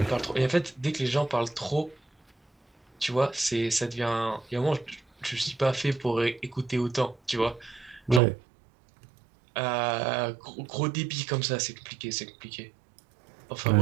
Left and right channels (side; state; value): left; drops out; at 8.2 s